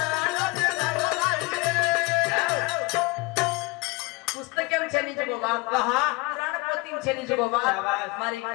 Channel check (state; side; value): quieter; right; 26.0 dB